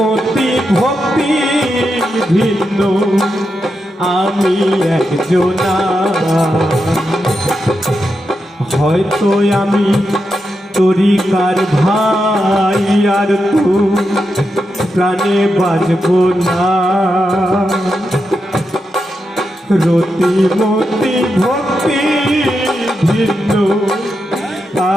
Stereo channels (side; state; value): both; normal; correlation 0.86